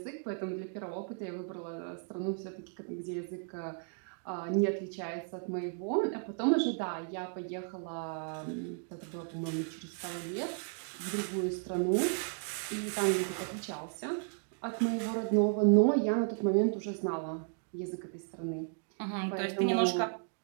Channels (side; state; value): left; silent; 55 dB below the other